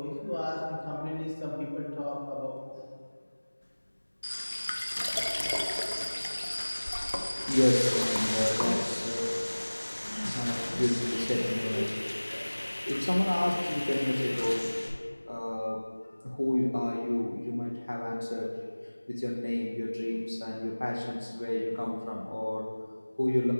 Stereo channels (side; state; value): both; inverted; correlation -1.00